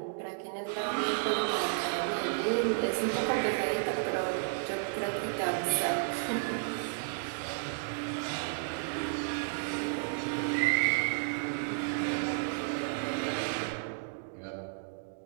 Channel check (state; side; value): silent; left; digital silence